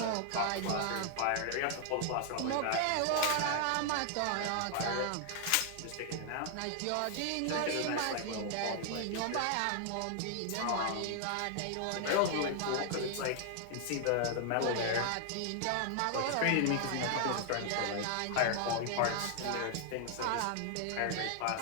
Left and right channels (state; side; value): different; both; correlation 0.00